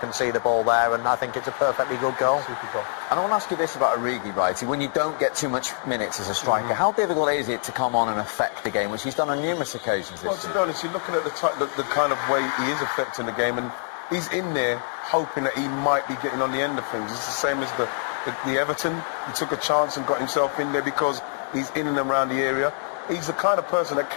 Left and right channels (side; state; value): right; silent; 62 dB below the other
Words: see the ball there, and I think it's a perfectly good goal. Super goal. And I want to ask you this about Origi, Wrighty. When you don't get too much minutes as a striker, how difficult is it to come on and affect the game, which he's done on numerous occasions this season? Well, to be honest, you're looking at the kind of way he is affecting the game, and he's in there hoping that he might be getting on the end of things. It's the same as the Everton. He took a chance and got himself in there because he's in and around the area. He's the kind of person that